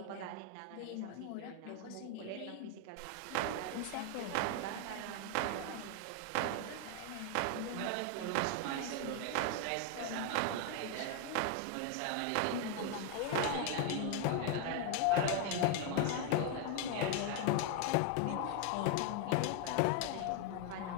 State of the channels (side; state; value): both; different; correlation 0.01